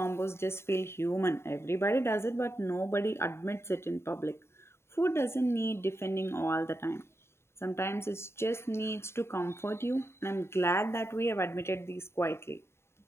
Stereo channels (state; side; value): late; right; 0.12 ms